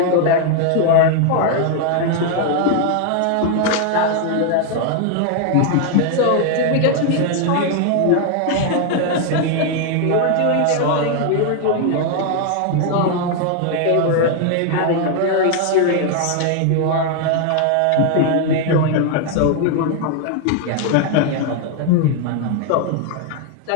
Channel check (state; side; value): different; both; correlation 0.00